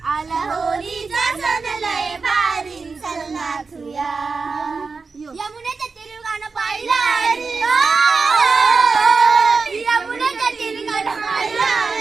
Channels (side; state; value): left; quieter; 4.5 dB